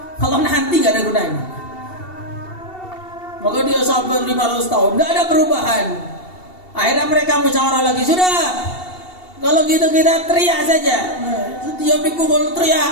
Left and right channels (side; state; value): right; late; 2.7 ms